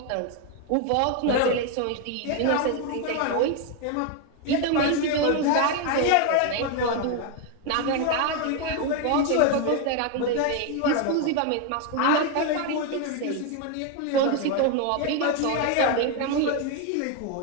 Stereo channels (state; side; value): different; both; correlation 0.01